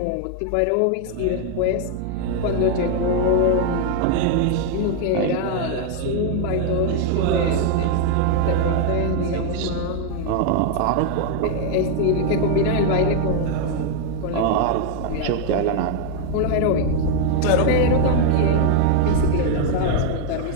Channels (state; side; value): different; both; correlation 0.00